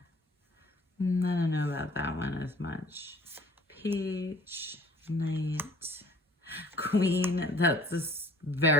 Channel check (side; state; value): both; normal; correlation 0.53